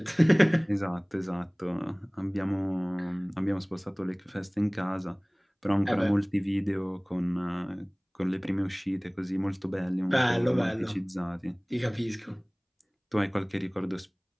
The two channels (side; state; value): both; identical; correlation 1.00